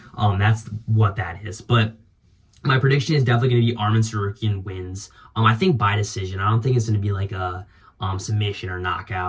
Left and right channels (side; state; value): both; identical; correlation 1.00